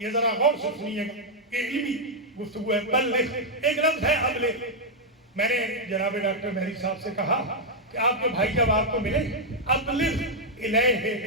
ذرا غور سے سنیے گا، یہ علمی گفتگو ہے۔ بلغ ایک لفظ ہے ابلغ۔ میں نے جناب ڈاکٹر مہری صاحب سے کہا کہ آپ کے بھائی جب آپ کو ملے، ابلغ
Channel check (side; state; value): both; normal; correlation -0.03